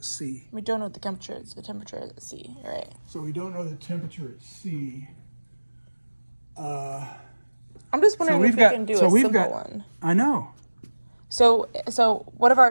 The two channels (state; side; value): inverted; both; correlation -1.00